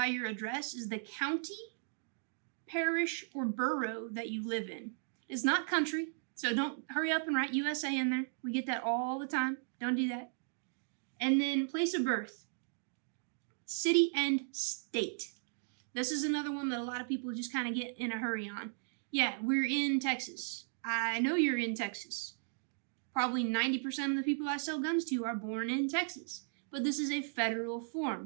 your address is the county, parish, or borough that you live in. It's not country, so don't hurry up and write USA in there. We get that all the time. Don't do that. And then place of birth, city and state. This is another one that a lot of people just kind of get in a hurry on. Yeah, we're in Texas. I know you're in Texas. Probably 90% of the people I sell guns to are born in Texas. But this is a federal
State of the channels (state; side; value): silent; left; digital silence